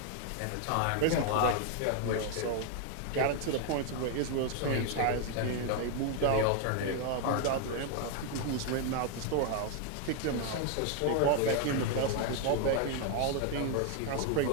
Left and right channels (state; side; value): different; both; correlation 0.01